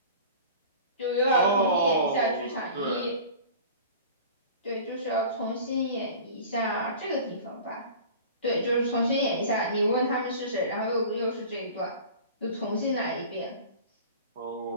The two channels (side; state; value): both; inverted; correlation -0.40